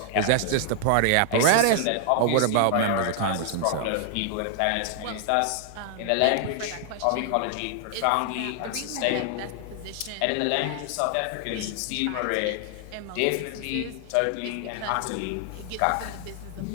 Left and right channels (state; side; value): different; both; correlation 0.00